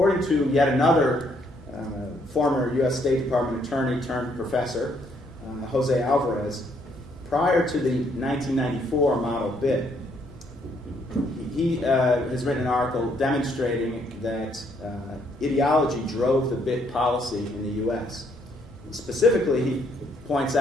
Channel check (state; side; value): normal; both; correlation 0.70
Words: to yet another former U.S. State Department attorney turned professor, Jose Alvarez, prior to the 1994 model BIT, he has written an article demonstrating that ideology drove the BIT policy in the U.S. Specifically, he points